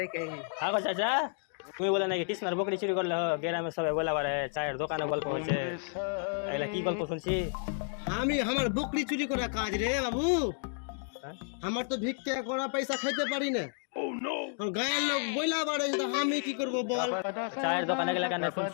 আগো চাচা তুমি বলে নাকি কৃষ্ণার বকরি চুরি করলে গ্রামে সবাই বলা পারে চায়ের দোকানে গল্প হচ্ছে, এগুলা কি গল্প শুনছি? আমি আমার বকরি চুরি করা কাজ রে বাবু, হ্যাঁ? আমার তো ভিক্ষা করা পয়সা খাইতে পারি না। আর গায়ের লোক বইলা বাড়ে তো আমি কি করব বল? চায়ের দোকানে গেলে কেন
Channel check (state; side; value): silent; right; 57 dB below the other